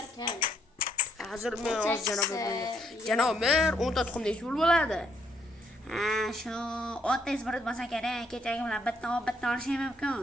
kam. Hozir men janob mer 10 ta tuxum nechta bo'ladi? Ha, shu 30 izbrut bo'lsa kerak. Kechagi bilan bitta olishim mumkin.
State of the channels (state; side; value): normal; both; correlation 0.72